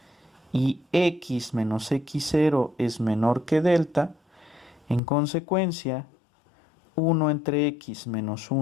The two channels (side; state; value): right; drops out; at 5.0 s